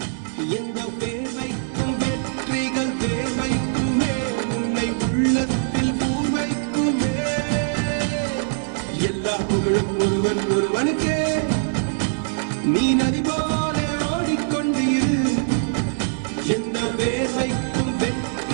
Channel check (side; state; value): left; silent; digital silence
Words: எந்த பேர்வைக்கும் வெற்றிகள் பேர்வைக்குமே உன்னை உள்ளத்தில் பூர்வைக்குமே எல்லா புகழும் ஒருவன் ஒருவனுக்கே நீ நதி போல ஓடிக்கொண்டீர் எந்த பேர்வைக்கும்